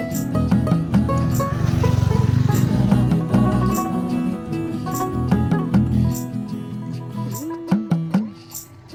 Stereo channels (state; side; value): identical; both; correlation 1.00